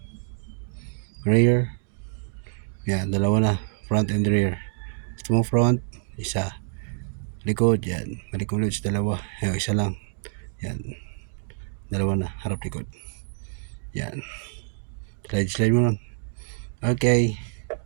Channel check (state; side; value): silent; left; digital silence